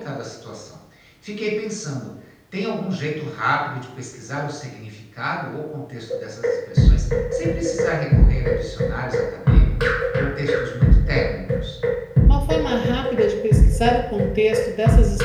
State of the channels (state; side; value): identical; both; correlation 1.00